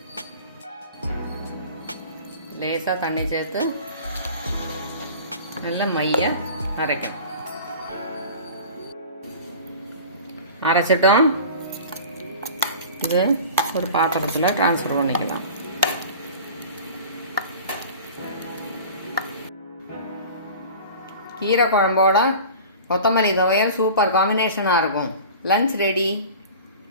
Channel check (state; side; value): inverted; both; correlation -0.40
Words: லேசாக தண்ணி சேர்த்து நல்லா மைய அரைக்கணும். அரைச்சிட்டோம். இது ஒரு பாத்திரத்தில் ட்ரான்ஸ்ஃபர் பண்ணிக்கலாம். கீரை குழம்போட கொத்தமல்லி துவையல் சூப்பர் காம்பினேஷனாக இருக்கும். Lunch ready.